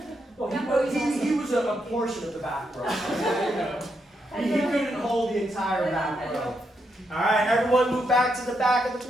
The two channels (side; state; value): both; normal; correlation 0.81